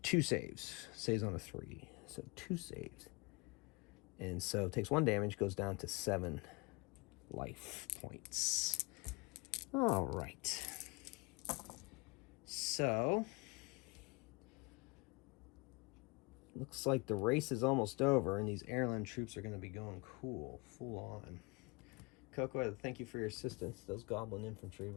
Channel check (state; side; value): quieter; right; 27.3 dB